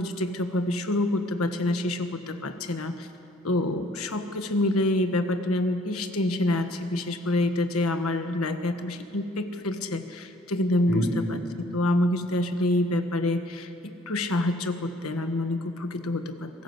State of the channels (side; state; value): both; normal; correlation 0.59